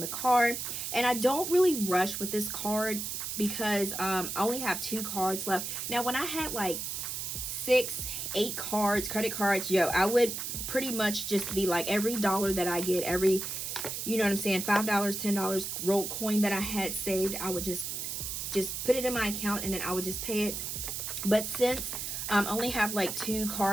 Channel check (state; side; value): noise; right; hiss, 4 dB below the sound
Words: card. And I don't really rush with this card, because I only have 2 cards left. Now when I had like 6, 8 cards, credit cards, yo, I would pretty much just be like, every dollar that I get, every, you know what I'm saying, $5, $10 rolled coin that I had saved, I would just put it in my account, and then I would just pay it But since I only have like 2